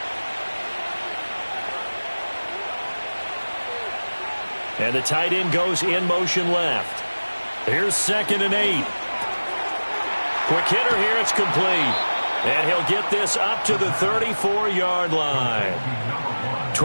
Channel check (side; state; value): both; inverted; correlation -1.00